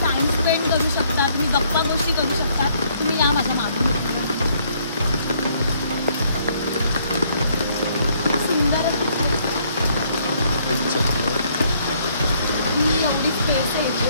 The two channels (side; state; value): both; inverted; correlation -0.66